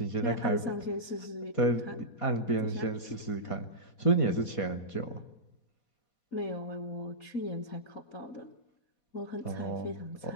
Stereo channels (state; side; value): late; right; 4.2 ms